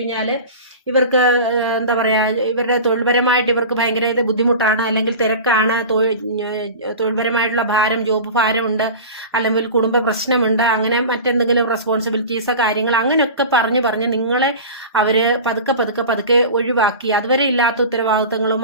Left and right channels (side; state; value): both; inverted; correlation -0.33